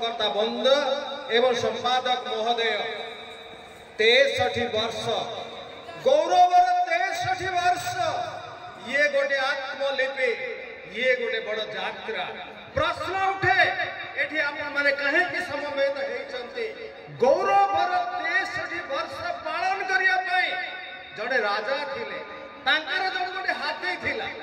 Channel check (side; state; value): both; identical; correlation 1.00